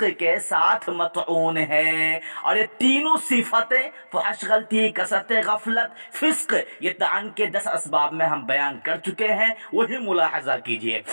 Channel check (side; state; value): both; inverted; correlation -1.00